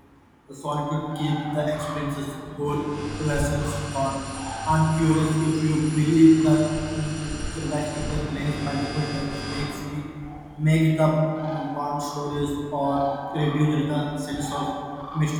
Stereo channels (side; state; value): both; identical; correlation 1.00